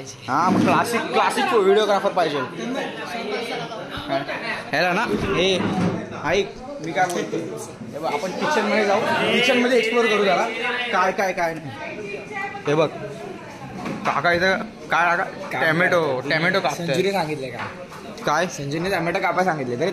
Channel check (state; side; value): identical; both; correlation 1.00